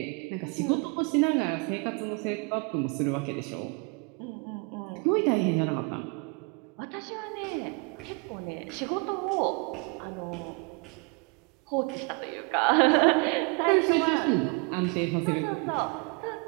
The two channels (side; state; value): left; quieter; 31.1 dB